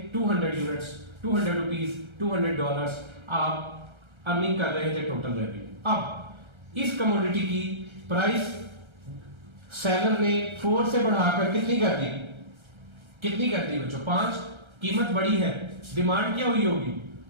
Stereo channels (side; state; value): left; late; 1.3 ms